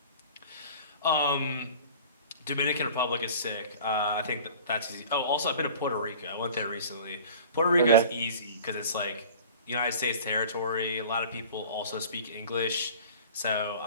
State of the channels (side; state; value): both; inverted; correlation -0.43